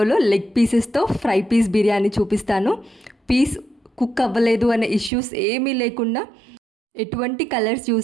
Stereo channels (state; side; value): drops out; left; at 5.1 s